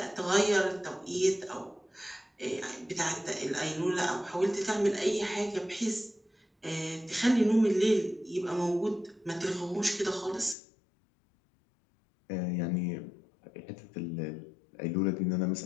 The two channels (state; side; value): drops out; right; at 10.6 s